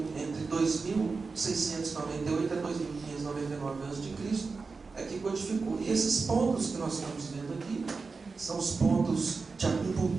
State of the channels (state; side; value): quieter; left; 4.4 dB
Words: entre 2.698 a 2.599 a.C., é que codificou. E esses pontos que nós estamos vendo aqui são os pontos de